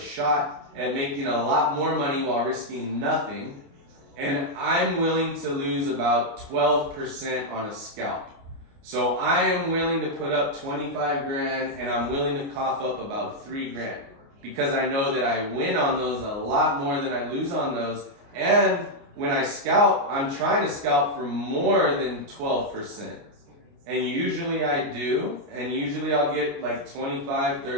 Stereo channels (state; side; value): late; left; 29 ms